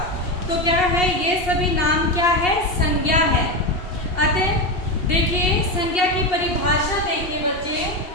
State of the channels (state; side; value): late; right; 2.7 ms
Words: तो क्या है? ये सभी नाम क्या है? संज्ञा है. अतः देखिए, संज्ञा की परिभाषा देखिए बच्चे.